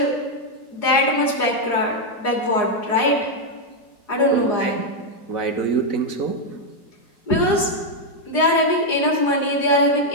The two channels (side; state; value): right; late; 4.8 ms